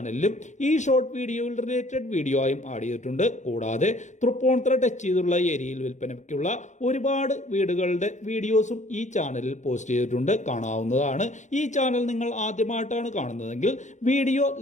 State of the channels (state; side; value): late; right; 0.35 ms